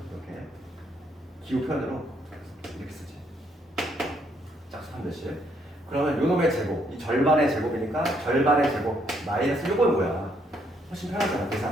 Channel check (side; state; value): both; normal; correlation 0.71